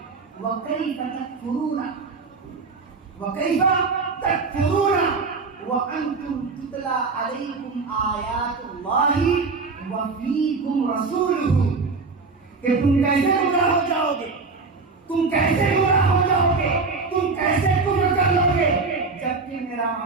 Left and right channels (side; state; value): left; quieter; 4.3 dB